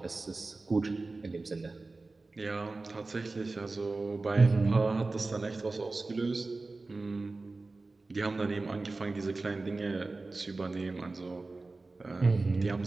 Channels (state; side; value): quieter; left; 3.5 dB